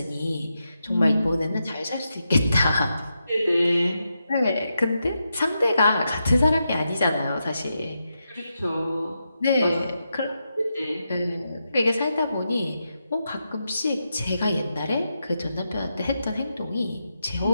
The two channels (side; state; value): both; inverted; correlation -0.86